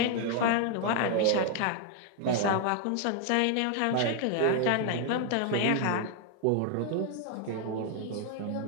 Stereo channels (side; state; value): both; different; correlation 0.00